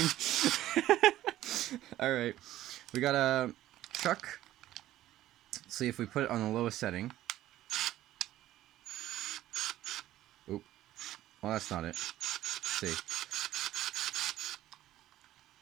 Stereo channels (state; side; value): quieter; left; 14.1 dB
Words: Alright, we got a chuck. Let's see if we put it on the lowest setting. Oop. Well, that's not it. Let's see.